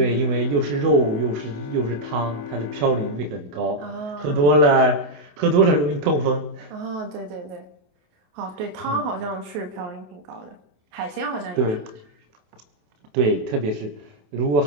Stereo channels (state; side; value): late; left; 28 ms